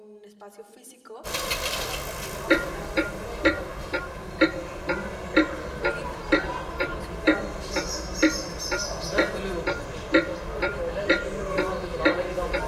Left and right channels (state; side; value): identical; both; correlation 1.00